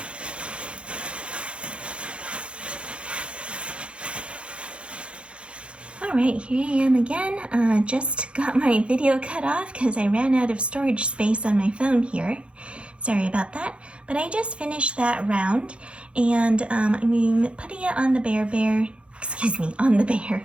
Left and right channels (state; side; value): late; left; 0.059 ms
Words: Alright, here I am again. Just got my video cut off because I ran out of storage space on my phone here. Sorry about that. But I just finished that round, and I'm putting it on the bear, on the bear,